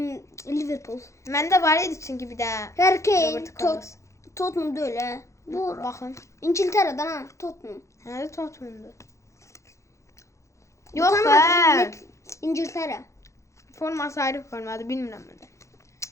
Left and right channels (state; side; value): late; right; 0.14 ms